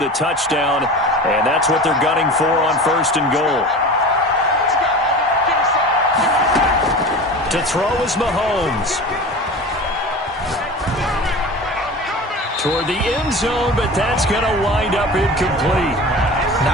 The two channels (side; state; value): both; normal; correlation 0.34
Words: a touchdown. And that's what they're gunning for on 1st and goal. To throw is Mahomes. Toward the end zone, but that's going to wind up incomplete.